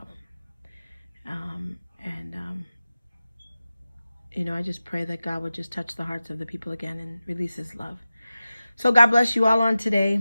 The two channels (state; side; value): inverted; both; correlation -0.95